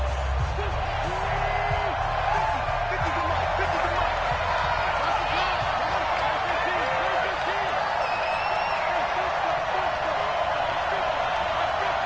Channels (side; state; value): both; identical; correlation 1.00